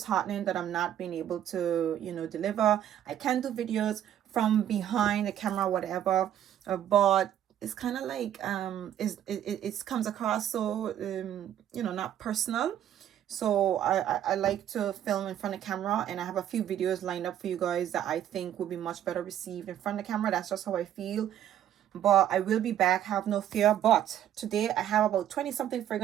that I'm not being able to, deliver. I can do videos from behind the camera, whatever, but it's kind of like it comes across so not personal. So I like to film in front of camera, and I have a few videos lined up for you guys that I think will be much better received in front of the camera. That's just how I feel. But I will be back, have no fear. But today I have about 20 something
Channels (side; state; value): left; quieter; 10.9 dB